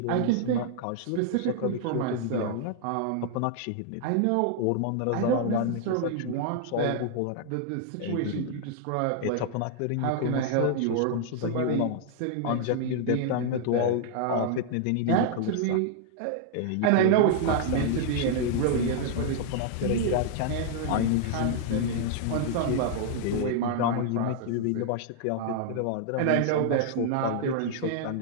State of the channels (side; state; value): both; different; correlation 0.00